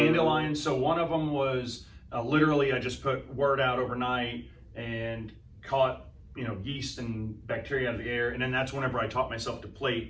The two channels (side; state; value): both; identical; correlation 1.00